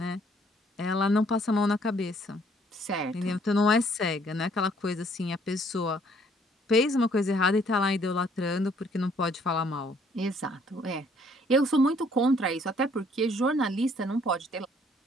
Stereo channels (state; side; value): normal; both; correlation 0.63